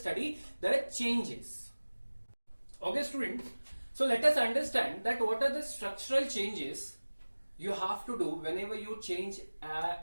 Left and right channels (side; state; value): both; inverted; correlation -1.00